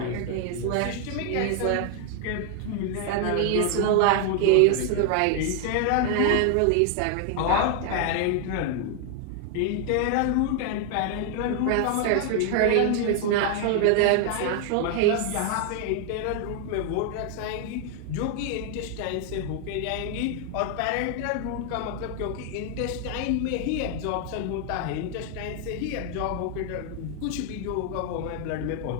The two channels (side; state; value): both; different; correlation 0.00